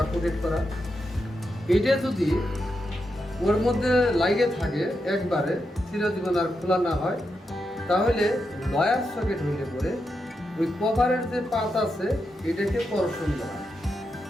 কোটেড করা। এটা যদি ওর মধ্যে লাগে থাকে একবারে চিরজীবন আর খোলা না হয়, তাহলে লয়ার সকেট হইলে পরে ওই কভারের যে পাত আছে এটাকে করশন দেওয়া,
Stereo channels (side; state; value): both; normal; correlation 0.86